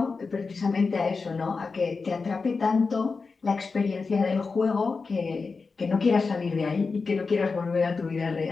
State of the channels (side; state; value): right; quieter; 4.5 dB